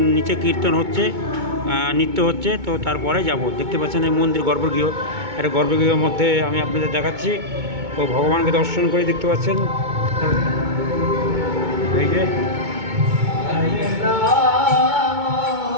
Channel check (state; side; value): late; left; 2.2 ms